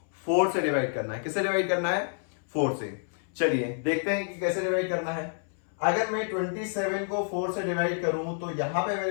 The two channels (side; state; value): right; silent; 59 dB below the other